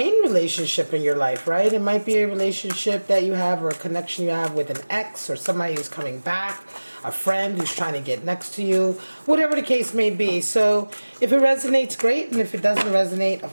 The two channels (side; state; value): both; inverted; correlation -1.00